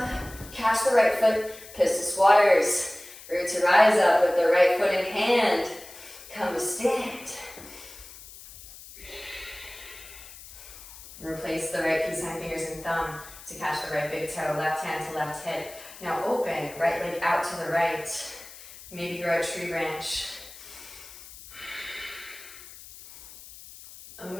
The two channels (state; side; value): noise; left; hiss, 17 dB below the sound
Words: Catch the right foot. Pistol squatters. Root to rise up with the right foot in hand. Come to stand. Replace the right peace sign, fingers and thumb to catch the right big toe. Left hand to left hip. Now open. Right leg out to the right. Maybe grow a tree branch.